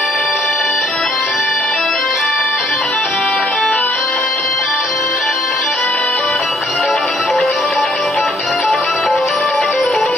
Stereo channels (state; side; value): normal; both; correlation 0.65